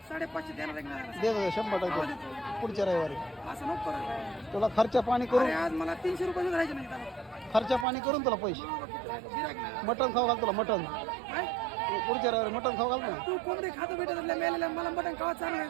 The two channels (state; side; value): drops out; left; at 7.9 s